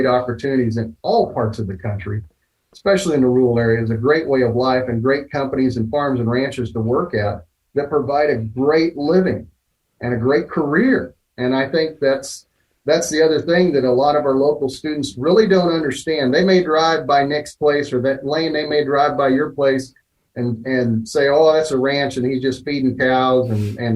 opportunities in all parts of the country, especially in the rural areas, a great way of life and great companies and farms and ranches to work at that provide a great living and a great career. And I think that's the other thing that a lot of our local students really don't understand. They may drive by Nick's place, or that Lane, they may drive by your place and say, oh, that's a ranch and he's just feeding cows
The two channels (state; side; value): identical; both; correlation 1.00